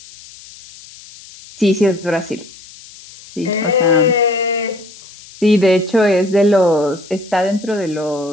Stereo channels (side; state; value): left; noise; hiss, 20 dB below the sound